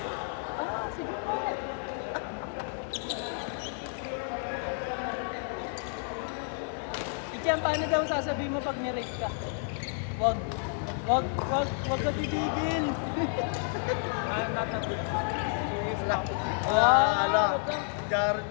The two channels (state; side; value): silent; right; 57 dB below the other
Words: Ah, sige po. Ichian, paano daw sasabihin mo pag nirate ka? Wag ka titigil. Ala. Jared